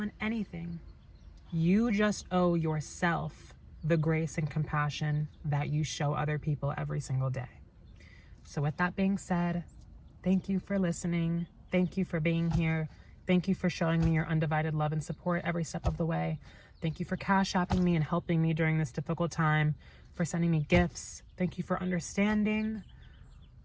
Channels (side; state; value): both; identical; correlation 1.00